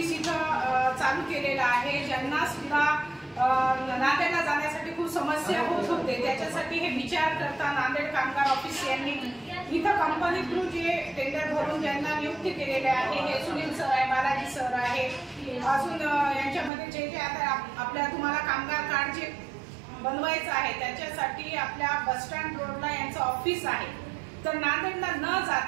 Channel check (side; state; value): left; drops out; at 16.7 s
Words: इथं चालू केलेलं आहे, ज्यांना सुद्धा नांदेडला जाण्यासाठी खूप समस्या होत होते, त्याच्यासाठी हे विचार करता नांदेड कामगार ऑफिस यांनी इथं कंपनी थ्रू जे टेंडर भरून ज्यांना नियुक्ती केलेले आहे, हे सुनील सर आहे, बालाजी सर आहे, अजून यांच्यामध्ये जे जे आता आपल्या तुम्हाला कामगार कार्ड जे बनवायचं आहे त्याच्यासाठी आपल्या बस स्टँड रोडला यांचं ऑफिस आहे। तर नांदेडला न